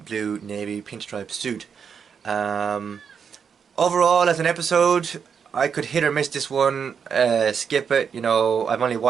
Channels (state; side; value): quieter; left; 6.8 dB